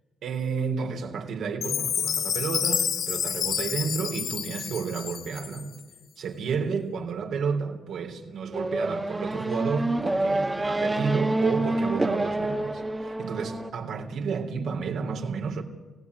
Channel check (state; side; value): normal; both; correlation 0.81